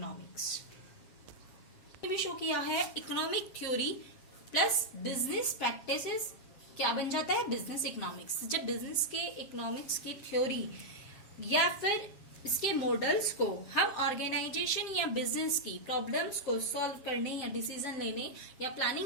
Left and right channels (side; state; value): right; late; 7.6 ms